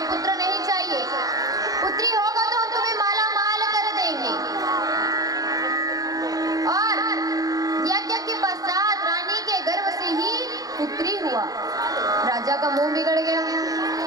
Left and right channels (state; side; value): late; left; 0.18 ms